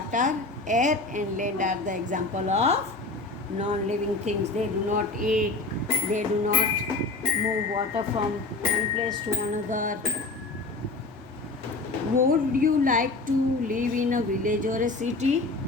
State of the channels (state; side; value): quieter; right; 3.4 dB